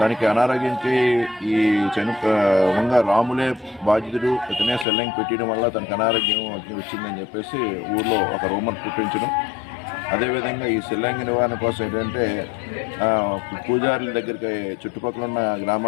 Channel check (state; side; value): drops out; right; at 4.9 s